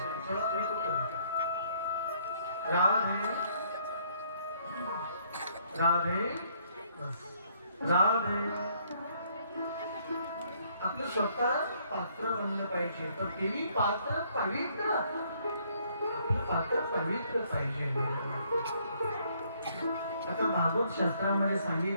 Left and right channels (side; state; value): both; inverted; correlation -0.66